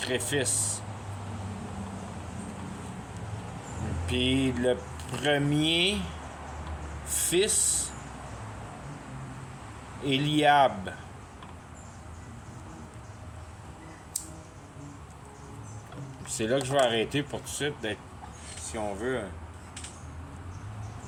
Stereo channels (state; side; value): identical; both; correlation 1.00